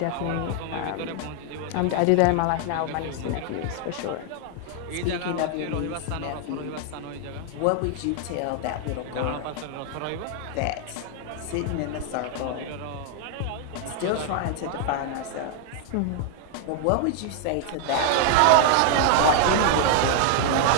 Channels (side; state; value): both; different; correlation 0.00